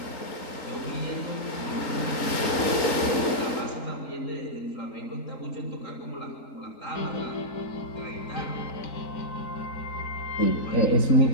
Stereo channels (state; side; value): late; right; 3.9 ms